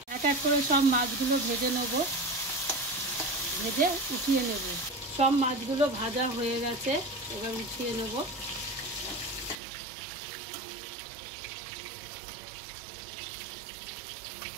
এক এক করে সব মাছগুলো ভেজে নেব, ভেজে উঠিয়ে নেব। সব মাছগুলো ভাজা হয়ে গেছে, এবার উঠিয়ে নেব।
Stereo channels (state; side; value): drops out; left; at 9.6 s